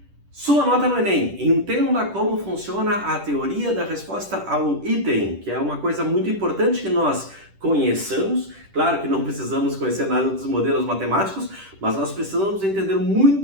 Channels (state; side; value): late; left; 10 ms